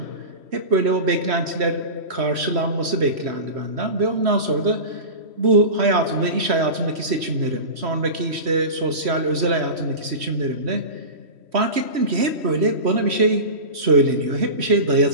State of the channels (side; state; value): left; late; 3.1 ms